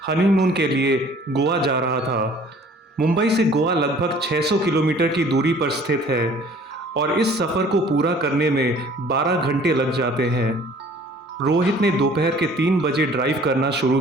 हनीमून के लिए गोवा जा रहा था। मुंबई से गोवा लगभग 600 किलोमीटर की दूरी पर स्थित है और इस सफ़र को पूरा करने में 12 घंटे लग जाते हैं। रोहित ने दोपहर के 3 बजे ड्राइव करना शुरू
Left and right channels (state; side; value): normal; both; correlation 0.52